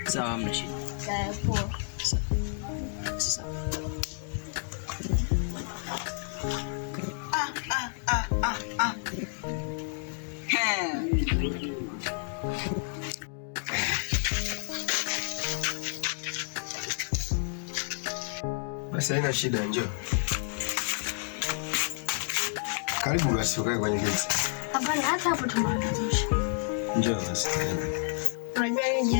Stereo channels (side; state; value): right; silent; 58 dB below the other